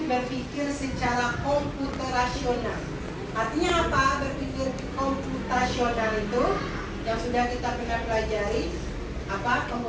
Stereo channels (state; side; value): identical; both; correlation 1.00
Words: berpikir secara komputerasional. Artinya apa berpikir komputasional itu? Yang sudah kita pernah pelajari. Apa